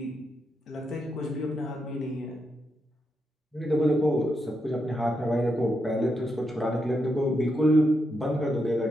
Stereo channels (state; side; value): normal; both; correlation 0.83